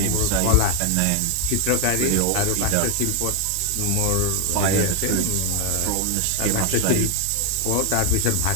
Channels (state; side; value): different; both; correlation 0.00